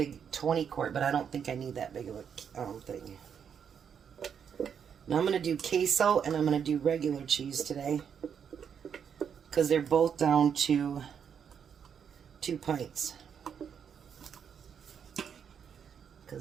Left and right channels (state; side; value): quieter; left; 7.6 dB